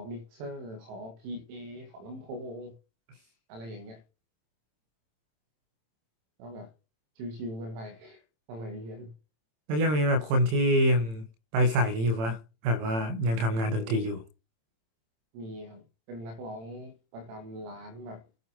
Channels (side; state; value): left; late; 27 ms